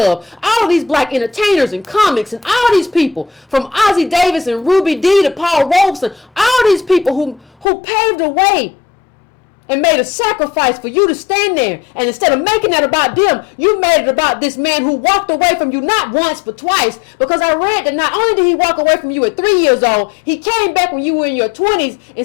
All of these black entertainers and comics and all these people. From Ozzie Davis and Ruby Dee to Paul Robeson. All these people who paved the way and made a sacrifice for you to stand there. And instead of making that about them, you made it about this man who walked away from you not once but twice. Because I read that not only did he walk away from you at 3 years old, he came back when you were in your 20s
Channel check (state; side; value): drops out; right; at 7.7 s